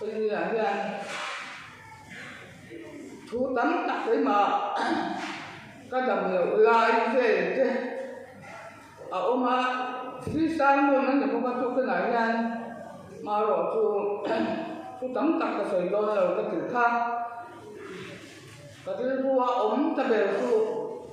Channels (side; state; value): both; identical; correlation 1.00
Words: tôi như là như anh thu tắm đặt đấy mà các đồng nghiệp lại về thế ông mà khi sang luôn nó cũng có chút cái này nha mà rồi chú tắm tặc cái sợi đôi rồi cái thứ khác cái thứ vua ống ta về chú